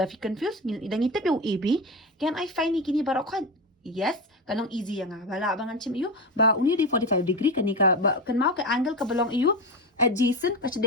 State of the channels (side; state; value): both; normal; correlation 0.20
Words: fi confuse ladang ngitip yung AB can I find ni kini barok kan yes kanong easy yang bala bangan chim iyo ba uni di 45 degree kan ni ka kan mau ka angle ka belong iyo adjacent ka